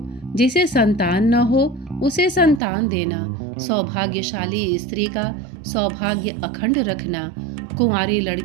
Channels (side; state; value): left; drops out; at 2.6 s